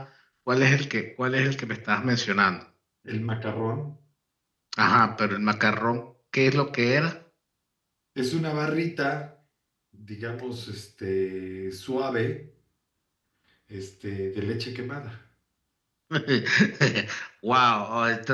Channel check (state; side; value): identical; both; correlation 1.00